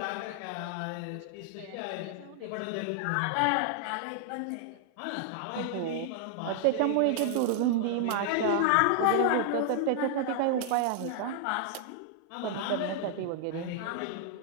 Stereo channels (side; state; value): both; different; correlation 0.00